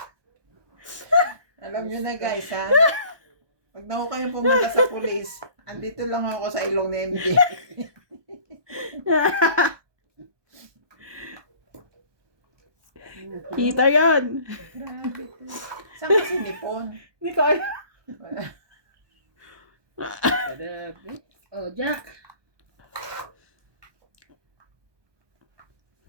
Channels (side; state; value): left; late; 1.2 ms